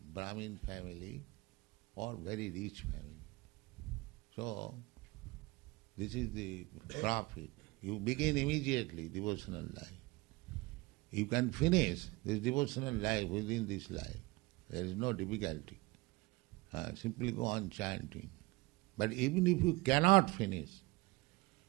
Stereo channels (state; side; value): quieter; left; 22.7 dB